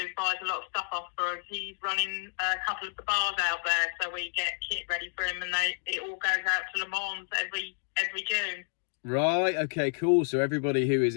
buys a lot of stuff off for us. He's running a couple of the bars out there, so we get kit ready for him, and it all goes out to Le Mans every June. Right, okay, cool. So everybody who is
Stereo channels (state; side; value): silent; right; 58 dB below the other